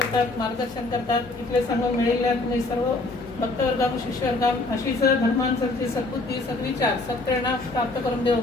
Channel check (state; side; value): quieter; right; 3.1 dB